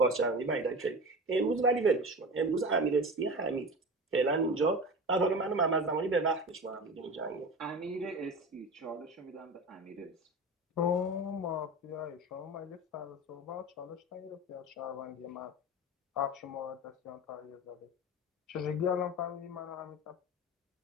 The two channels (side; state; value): both; normal; correlation 0.30